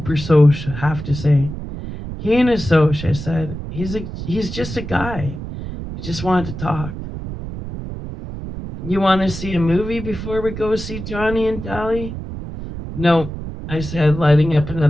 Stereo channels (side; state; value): right; noise; rumble, 8 dB below the sound